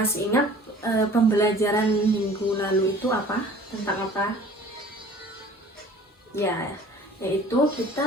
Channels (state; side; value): normal; both; correlation 0.48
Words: ingat pembelajaran minggu lalu itu apa? Tentang apa? Ya, yaitu